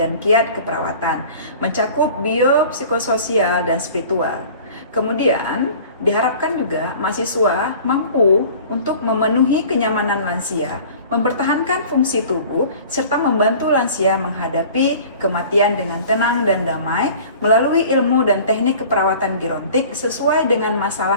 kiat keperawatan, mencakup bio, psikososial, dan spiritual. Kemudian diharapkan juga mahasiswa mampu untuk memenuhi kenyamanan lansia, mempertahankan fungsi tubuh, serta membantu lansia menghadapi kematian dengan tenang dan damai melalui ilmu dan teknik keperawatan gerontik sesuai dengan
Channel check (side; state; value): both; inverted; correlation -0.45